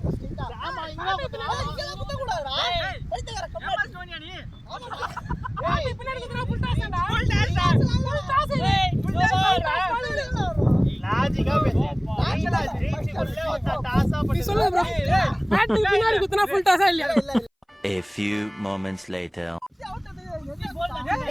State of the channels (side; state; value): both; identical; correlation 1.00